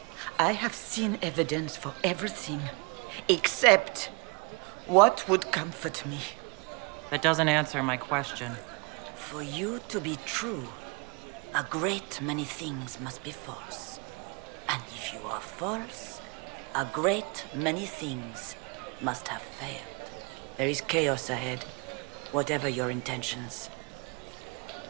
I have seen evidence for everything, except what would comfort me. That doesn't answer my question. For you to be true, a great many things must be false. And if you are false, a great many things must have failed. There is chaos ahead, whatever your intentions.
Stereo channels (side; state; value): left; quieter; 30.9 dB